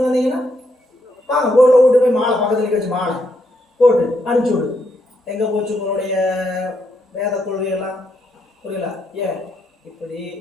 வந்தீங்கன்னா வாங்க கோயிலில் விட்டு போய் மாலை பக்கத்தில் வச்சு மாலை போட்டு அனுப்பிச்சி விடு. எங்கே போச்சு உங்களுடைய வேத கொள்கையெல்லாம்? புரியல. ஏன் இப்படி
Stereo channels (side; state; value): both; normal; correlation 0.77